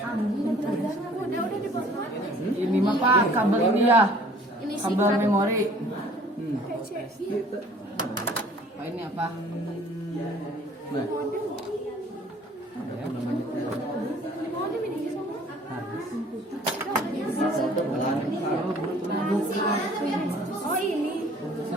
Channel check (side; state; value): both; normal; correlation 0.53